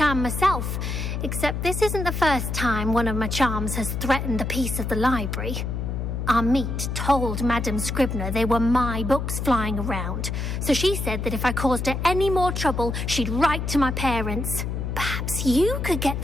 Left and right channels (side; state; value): left; noise; hum, 3 dB below the sound